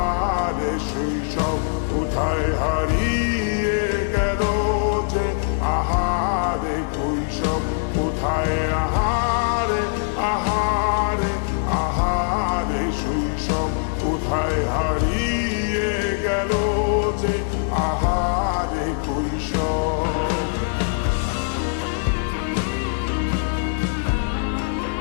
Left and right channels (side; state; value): right; silent; 55 dB below the other